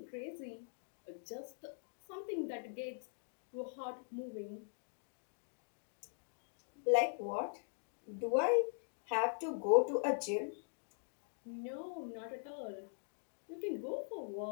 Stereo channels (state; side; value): silent; right; digital silence